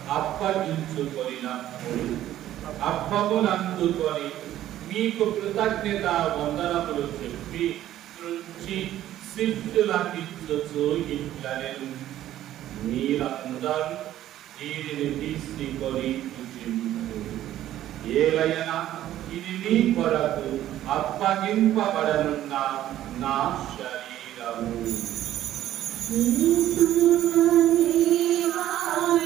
అప్పగించుకొనినప్పుడు అప్పమునందుకొని మీకు కృతజ్ఞత వందనములు చెప్పి త్రుంచి శిష్యులకిచ్చుచు ఇట్లనెను, మీరందరూ దీనిని తీసుకొని భుజించుడు. ఏలయన ఇది మీ కొరకు అప్పగింపబడనున్న నా శరీరము.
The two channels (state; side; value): quieter; left; 12.9 dB